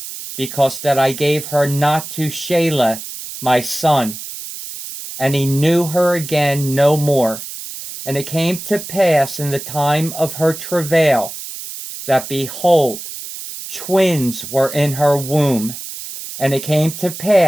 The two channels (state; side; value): noise; right; hiss, 10 dB below the sound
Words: because that I gave her not to Shelah my son. And he knew her again no more. And it came to pass in the time of her travail, that behold, twins were in her womb. And it came to